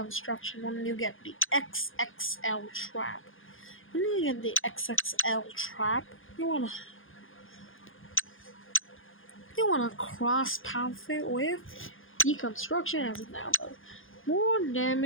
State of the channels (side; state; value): right; late; 0.59 ms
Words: when you get the XXL trap. When you get the XXL trap, you wanna cross path it with deconstruction as it now does. More